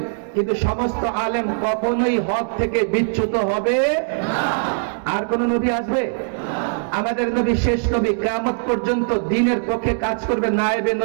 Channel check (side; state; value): left; silent; digital silence